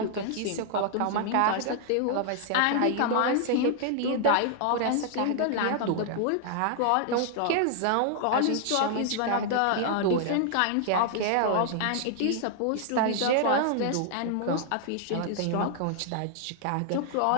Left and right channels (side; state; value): both; different; correlation 0.00